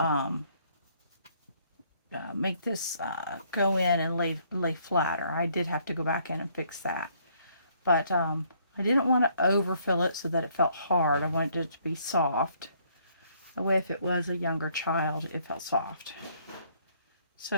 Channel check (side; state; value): both; inverted; correlation -0.66